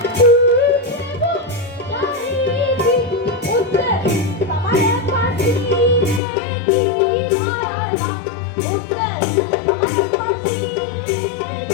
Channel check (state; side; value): drops out; right; at 6.2 s